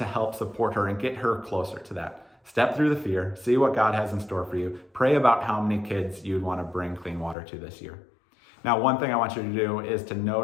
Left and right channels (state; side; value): drops out; right; at 7.4 s